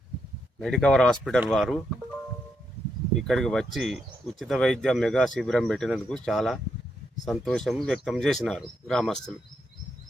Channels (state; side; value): normal; both; correlation 0.80